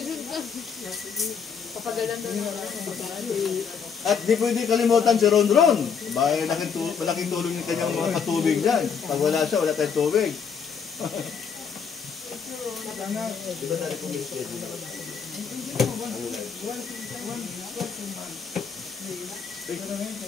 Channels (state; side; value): quieter; right; 6.5 dB